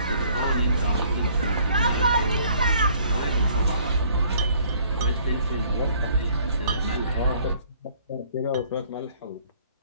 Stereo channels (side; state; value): both; inverted; correlation -0.60